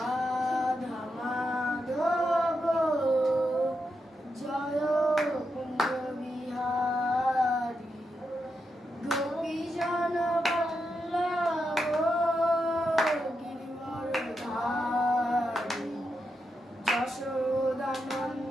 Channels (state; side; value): normal; both; correlation 0.85